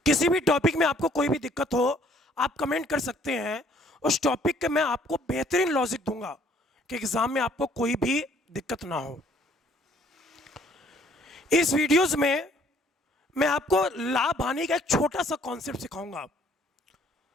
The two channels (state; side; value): normal; both; correlation 0.60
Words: किसी भी टॉपिक में आपको कोई भी दिक्कत हो आप कमेंट कर सकते हैं। उस टॉपिक के मैं आपको बेहतरीन लॉजिक दूंगा कि एग्जाम में आपको कोई भी दिक्कत ना हो। इस वीडियोस में मैं आपको लाभ हानि का एक छोटा सा कॉन्सेप्ट सिखाऊंगा,